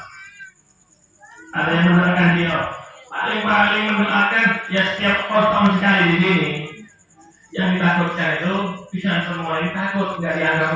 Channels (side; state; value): both; identical; correlation 1.00